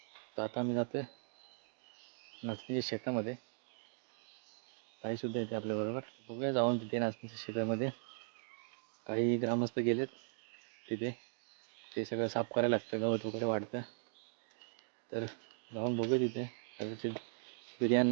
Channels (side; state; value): left; silent; digital silence